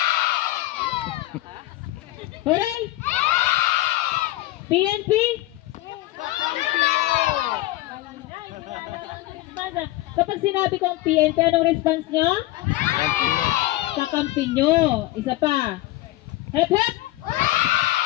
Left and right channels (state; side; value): quieter; right; 17.2 dB